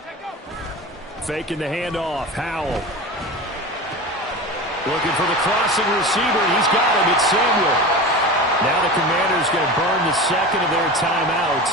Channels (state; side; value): normal; both; correlation 0.29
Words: Faking the handoff. Howell. Looking for the crossing receiver. He's got him. It's Samuel. Now the Commanders going to burn the 2nd of their